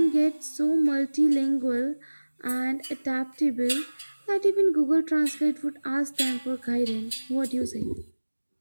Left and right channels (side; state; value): both; inverted; correlation -1.00